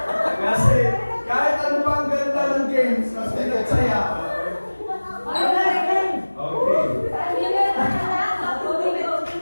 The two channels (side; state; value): both; inverted; correlation -1.00